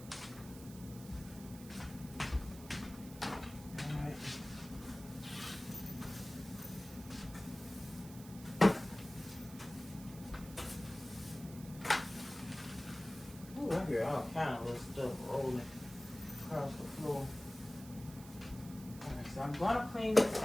I hear all kind of little stuff rolling across the floor. Alright, so I'm gonna clean this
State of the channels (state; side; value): noise; right; hiss, 17 dB below the sound